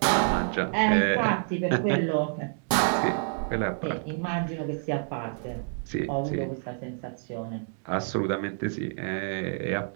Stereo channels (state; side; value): silent; left; digital silence